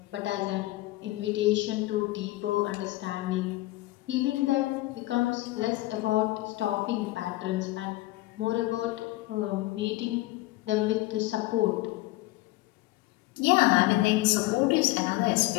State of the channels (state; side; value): quieter; right; 18.8 dB